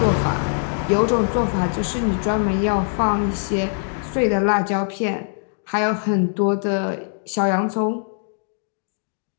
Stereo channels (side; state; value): right; silent; digital silence